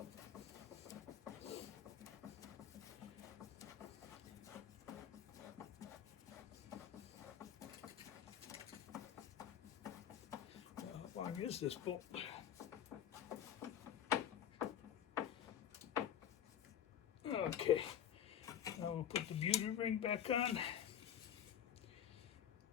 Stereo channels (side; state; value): right; quieter; 9.5 dB